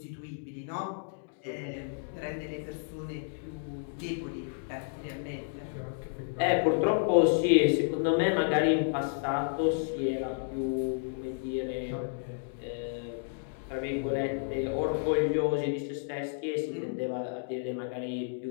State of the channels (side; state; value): right; silent; digital silence